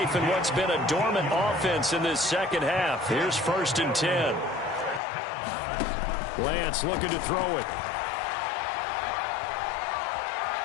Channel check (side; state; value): right; drops out; at 5.0 s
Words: in what's been a dormant offense in this second half. Here's 1st and 10. Lance looking to throw it.